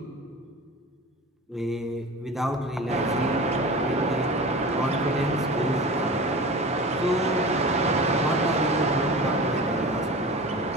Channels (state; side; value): normal; both; correlation 0.34